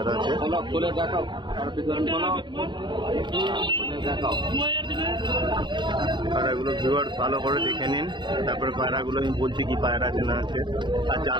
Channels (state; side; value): late; left; 0.22 ms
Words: আছে। পায়রাগুলো ভিউয়ার্স ভালো করে দেখে নিন, তারপরে পায়রাগুলো আমি বলছি কি পায়রা আছে না আছে। আর